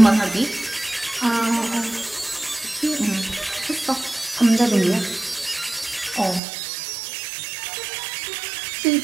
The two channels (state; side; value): drops out; left; at 6.4 s